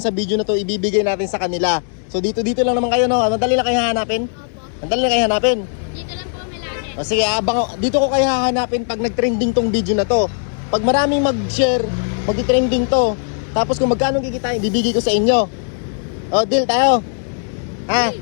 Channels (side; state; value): right; silent; digital silence